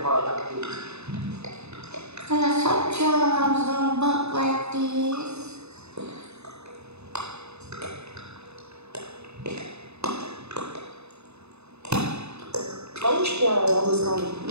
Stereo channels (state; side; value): late; left; 0.80 ms